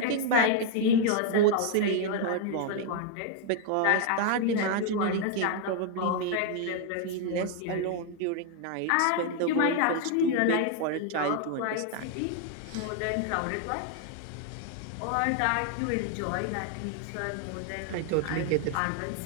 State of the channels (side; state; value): both; different; correlation 0.00